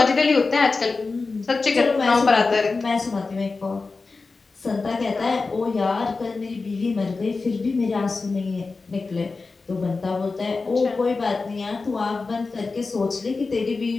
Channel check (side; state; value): right; quieter; 4.0 dB